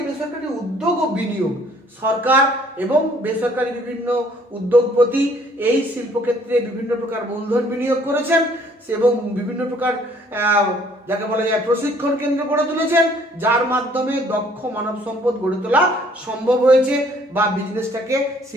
বেসরকারি উদ্যোগ ও বিনিয়োগ, সরকার এবং বেসরকারি বিভিন্ন উদ্যোগপতি এই শিল্পক্ষেত্রে বিভিন্ন প্রকার মূলধন বিনিয়োগ করেছেন এবং বিভিন্ন প্রকার যাকে বলা যায় প্রশিক্ষণ কেন্দ্র গড়ে তুলেছেন, যার মাধ্যমে দক্ষ মানব সম্পদ গড়ে তোলা সম্ভব হয়েছে বা বিজনেসটাকে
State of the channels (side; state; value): both; normal; correlation 0.60